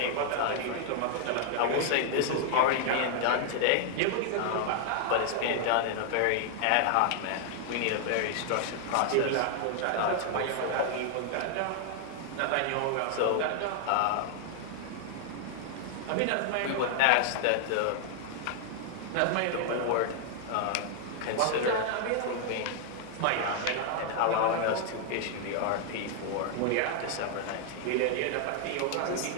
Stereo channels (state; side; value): different; both; correlation 0.00